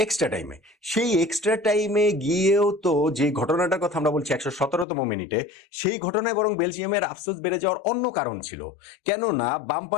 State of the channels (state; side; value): drops out; right; at 4.9 s